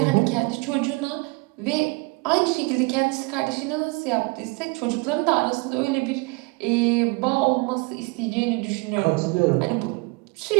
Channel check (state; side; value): quieter; left; 27.8 dB